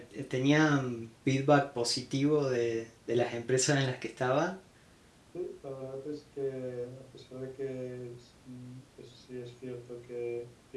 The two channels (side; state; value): both; identical; correlation 1.00